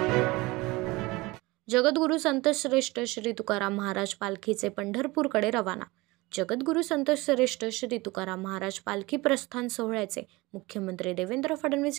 जगद्गुरू संतश्रेष्ठ श्री तुकाराम महाराज पालखीचे पंढरपूरकडे रवाना. जगद्गुरू संतश्रेष्ठ श्री तुकाराम महाराज पालखी प्रस्थान सोहळ्याचे मुख्यमंत्री देवेंद्र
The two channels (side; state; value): left; quieter; 22.1 dB